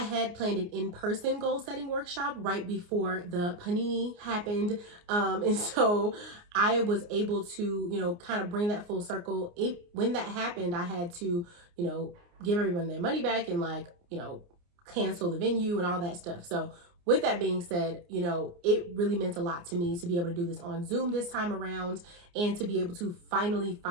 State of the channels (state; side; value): late; left; 29 ms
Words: had planned an in-person goal setting workshop right before the panini happened. And so I was able to, kind of bring that full circle. When that happened, I had to, give everyone their money back and cancel the venue and all that stuff. So with that being said, it really meant a lot to me to be able to do this on Zoom this time around and to be able to finally